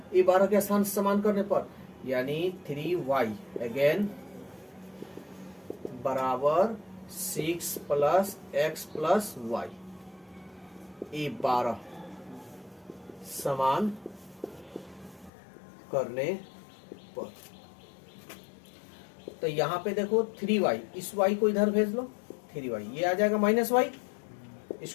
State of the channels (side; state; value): right; drops out; at 15.3 s